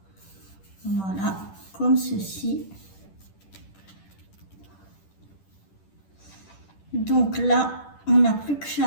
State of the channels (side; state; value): right; late; 10 ms